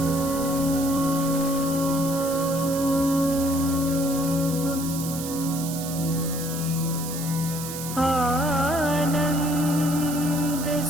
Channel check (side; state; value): right; noise; hiss, 8 dB below the sound